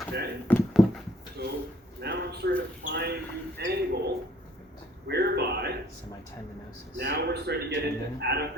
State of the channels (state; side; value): normal; both; correlation 0.60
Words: okay? So now I'm starting to find the angle whereby semitendinosus. now we're starting to get into